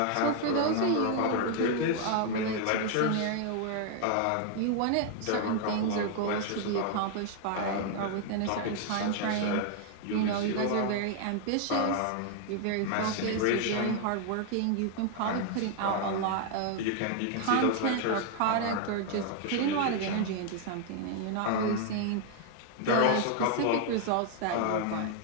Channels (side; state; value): both; different; correlation 0.00